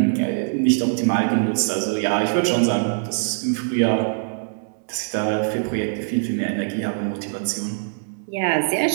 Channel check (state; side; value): silent; left; digital silence